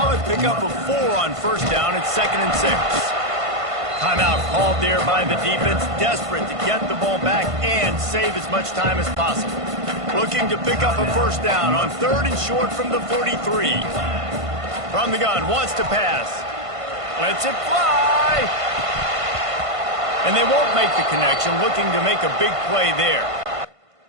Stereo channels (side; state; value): left; late; 1.5 ms